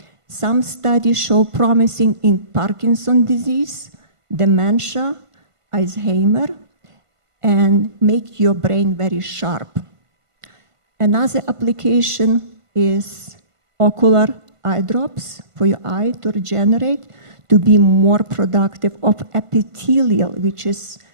Some studies show promising in Parkinson's disease, dementia, Alzheimer, and make your brain very sharp. Another application is ocular eye drops for your eye to regenerate, to be more productive of epithelial, which is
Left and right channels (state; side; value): late; left; 1.5 ms